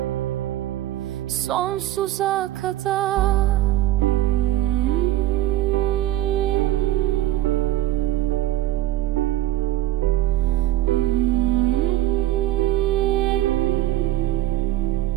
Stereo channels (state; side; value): quieter; left; 14.1 dB